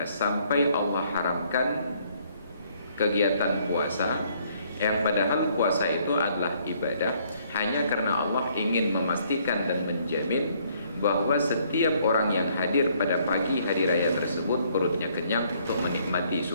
sampai Allah haramkan kegiatan puasa, yang padahal puasa itu adalah ibadah, hanya karena Allah ingin memastikan dan menjamin bahwa setiap orang yang hadir pada pagi hari raya tersebut perutnya kenyang untuk menikmati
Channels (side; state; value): both; inverted; correlation -0.66